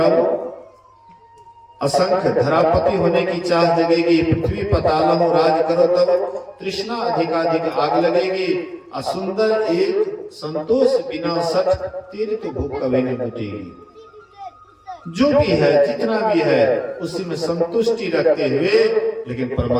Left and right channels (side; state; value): both; identical; correlation 1.00